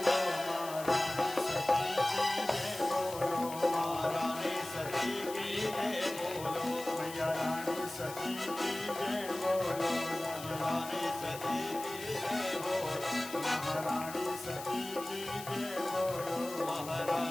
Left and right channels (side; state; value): left; noise; hiss, 12 dB below the sound